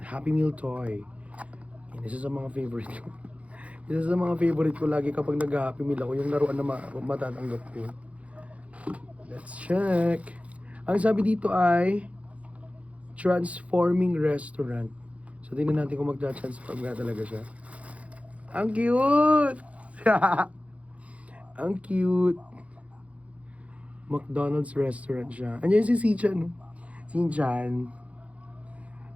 Happy Meal toy. Yan, isa sa mga favorite ko. Isa sa mga favorite ko lagi kapag nag-Happy Meal ako, yung laruan na matatanggap ko. Let's check. Ang sabi dito ay Transforming Restaurant. So, tingnan natin kung magta-transform nga talaga siya. Ang cute! Ang cute! McDonald's restaurant siya. Andiyan si Shin-chan, no? Shin-chan.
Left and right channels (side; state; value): left; late; 0.065 ms